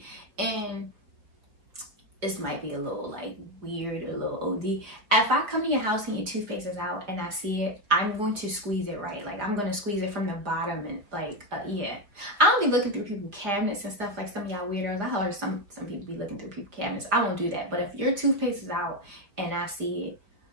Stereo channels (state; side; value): late; left; 4.7 ms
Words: And this might be a little, like, weird or a little OD. If I come to your house and your toothpaste is out and I see it, I'm going to squeeze it right. Like, I'm going to squeeze it from the bottom and, like, yeah. I don't be looking through people's cabinets and stuff like some of y'all weirdos. I heard some people be looking through people's cabinets. I won't do that. But if your toothpaste is out and I see it,